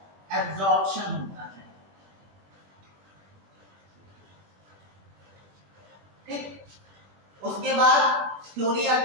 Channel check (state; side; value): late; left; 20 ms